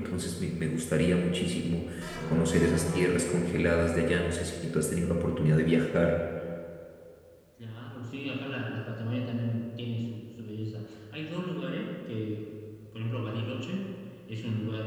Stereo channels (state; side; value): identical; both; correlation 1.00